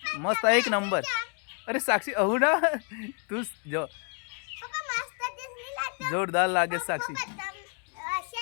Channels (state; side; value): quieter; right; 37.7 dB